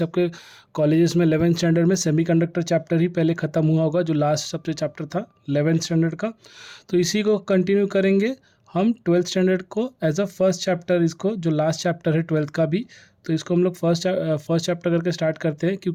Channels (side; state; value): both; identical; correlation 1.00